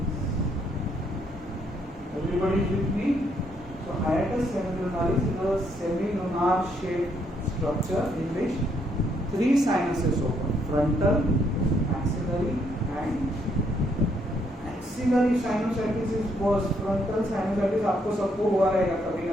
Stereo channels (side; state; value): both; normal; correlation 0.72